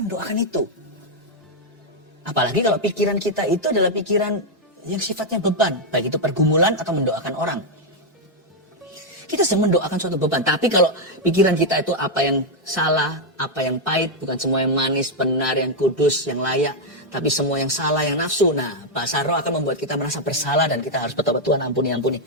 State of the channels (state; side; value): normal; both; correlation 0.00